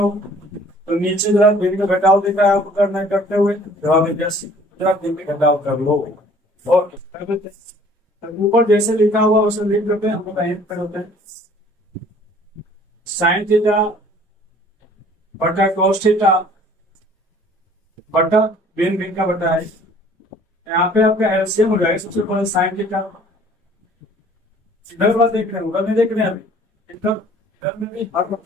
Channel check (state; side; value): normal; both; correlation 0.54